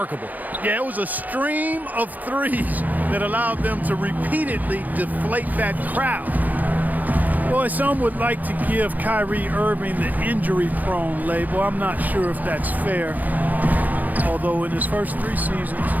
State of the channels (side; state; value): left; late; 0.081 ms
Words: Yeah, it was a stream of threes that allowed them to repeatedly deflate that crowd. Boy, some would like to give Kyrie Irving the injury-prone label. I'm not sure if that's fair. Although in his first 3 seasons,